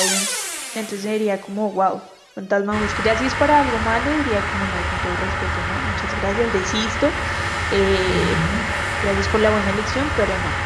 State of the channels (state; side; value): identical; both; correlation 1.00